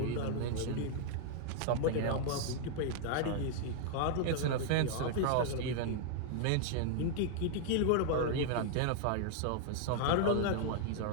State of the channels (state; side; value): different; both; correlation 0.00